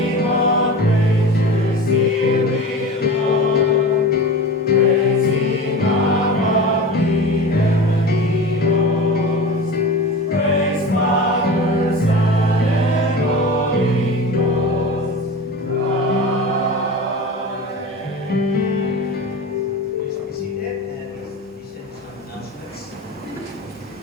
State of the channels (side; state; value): both; normal; correlation 0.31